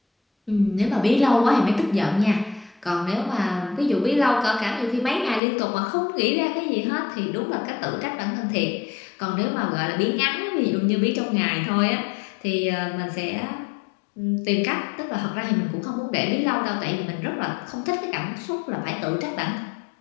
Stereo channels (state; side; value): drops out; right; at 5.4 s